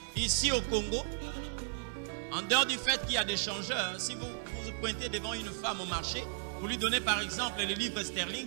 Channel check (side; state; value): left; silent; digital silence